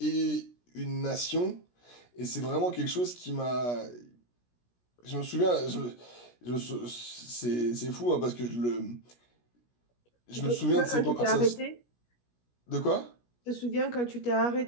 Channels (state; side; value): late; right; 17 ms